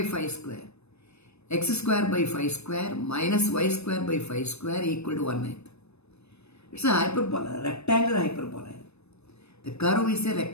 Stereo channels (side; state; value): right; late; 0.80 ms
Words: 5 square. x square by 5 square minus y square by 5 square equal to 1/9. It's a hyperbola, rectangular hyperbola. The curve is a